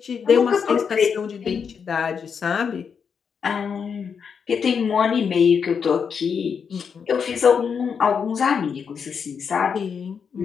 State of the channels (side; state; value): right; quieter; 6.5 dB